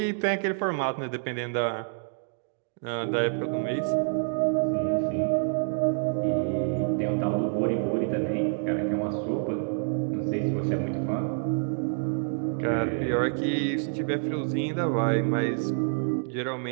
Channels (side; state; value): left; silent; digital silence